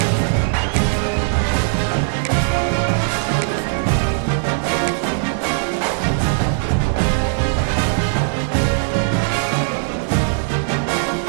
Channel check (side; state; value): left; silent; digital silence